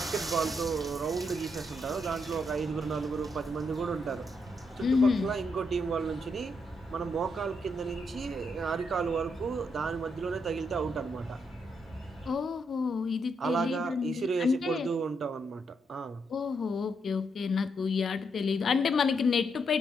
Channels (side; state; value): both; normal; correlation 0.79